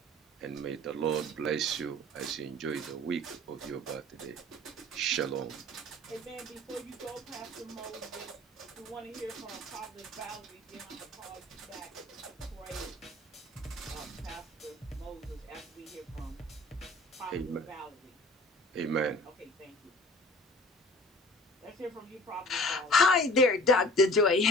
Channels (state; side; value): normal; both; correlation 0.46